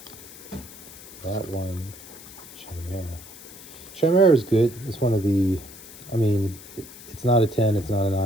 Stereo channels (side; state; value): left; noise; hiss, 17 dB below the sound